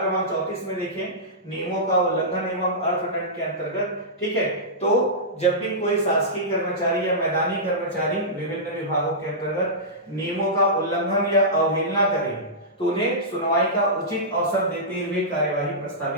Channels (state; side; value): normal; both; correlation -0.15